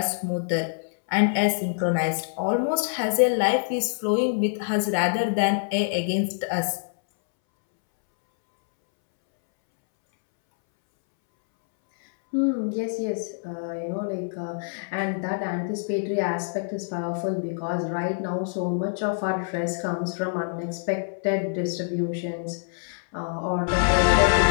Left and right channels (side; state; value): right; silent; 61 dB below the other